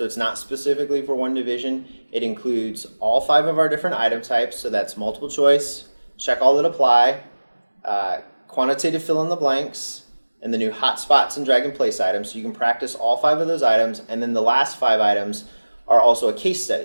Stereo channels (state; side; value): inverted; both; correlation -1.00